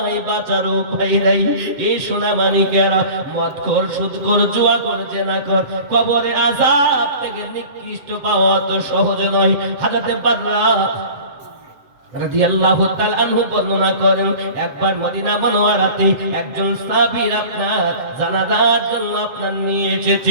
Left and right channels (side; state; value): left; late; 7.5 ms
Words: বাঁচার উপায় নাই। এই সোনা মানিকেরা, মদখোর, সুদখোর, জুয়াখোর, জেনাখোর, কবরের আযাব থেকে নিকৃষ্ট পাওয়া তো সহজ নয়। হযরত বাররা রাদিয়াল্লাহু তাআলা আনহু বর্ণনা করেন, একবার মদিনা মুনাওয়ারাতে একজন সাহাবীর আপনার জানাজার জন্য আপনার নিয়ে